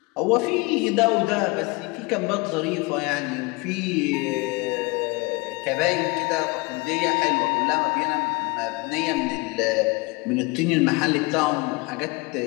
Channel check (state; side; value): quieter; right; 26.3 dB